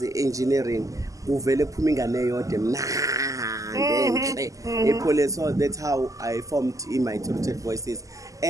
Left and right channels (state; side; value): late; left; 0.16 ms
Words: engineering kuvele kuphuma ingane eyodwa mnandi enhle so that's how I formed in my rooted voices